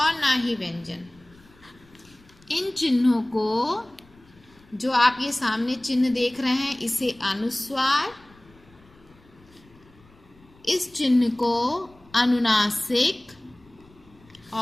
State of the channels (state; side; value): noise; left; rumble, 28 dB below the sound